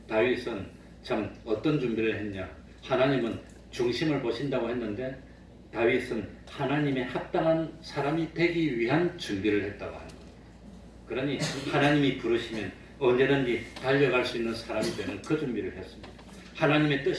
다윗은 참 어떤 준비를 했냐? 하나님은 중심을 보신다고 했는데 다윗은 하나님의 합당한 사람이 되기 위한 준비를 했다고 하는 겁니다. 그러니 하나님이 부르시면 언제든지 달려갈 수 있는 사람이 되는 그 준비를 했습니다. 하나님의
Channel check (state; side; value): identical; both; correlation 1.00